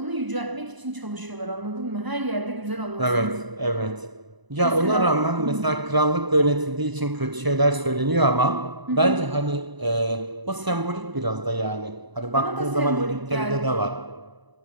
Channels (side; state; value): left; late; 1.0 ms